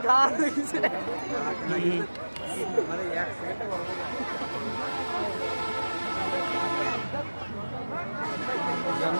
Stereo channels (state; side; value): inverted; both; correlation -1.00